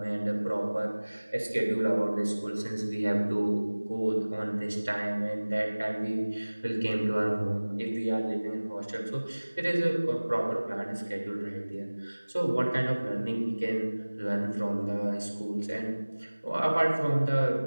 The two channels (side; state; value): both; inverted; correlation -1.00